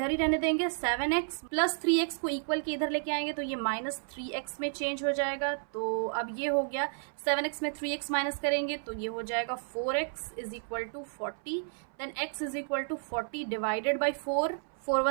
ही रहने देंगे, 7x प्लस 3x को इक्वल के इधर लेके आएंगे तो ये माइनस 3x में चेंज हो जाएगा। तो अब ये हो गया 7x में 3x माइनस करेंगे तो ये हो जाएगा 4x is equal to 40। Then x is equal to 40 divided by 4, 4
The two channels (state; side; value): silent; left; 57 dB below the other